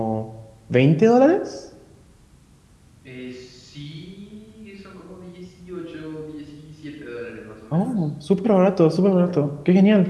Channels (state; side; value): identical; both; correlation 1.00